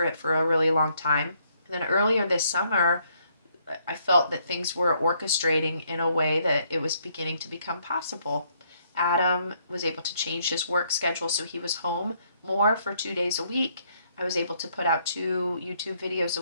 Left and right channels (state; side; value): inverted; both; correlation -0.70